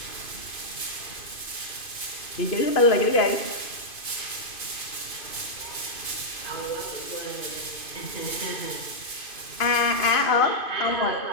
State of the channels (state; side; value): late; right; 2.5 ms